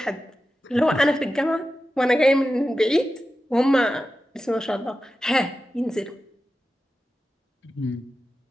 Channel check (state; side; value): normal; both; correlation 0.92